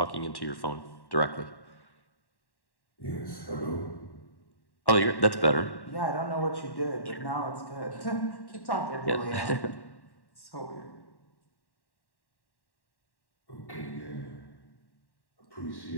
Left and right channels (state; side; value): late; right; 1.1 ms